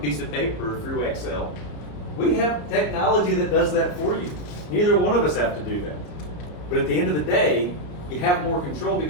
of paper or through Excel. We have technology that does that for you. Neither one of us have to do that. But at the end of the day, you have more control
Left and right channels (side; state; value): right; late; 34 ms